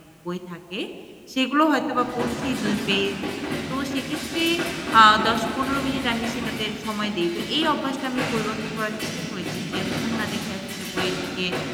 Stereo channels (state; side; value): identical; both; correlation 1.00